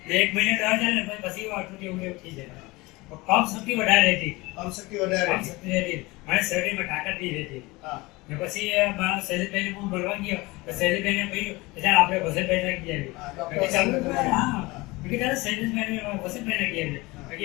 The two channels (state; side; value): quieter; right; 22.5 dB